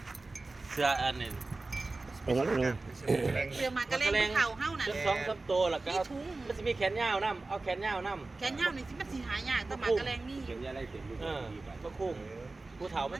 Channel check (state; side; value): quieter; left; 3.4 dB